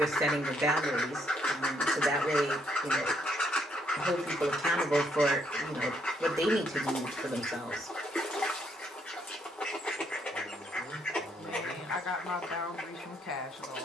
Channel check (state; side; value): normal; both; correlation 0.72